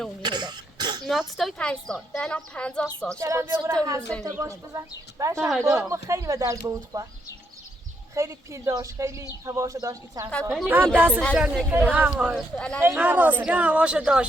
هدا ناتوی 5 سال الان 50 سال چرا بیا برو حرف تا باش بزن بعدش ما خیلی به درد بود خوا خیلی پیل داشت خیلی هواشو داشت این چند سال هم دستش جان نکنه هم راسته هواش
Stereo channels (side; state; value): both; normal; correlation 0.76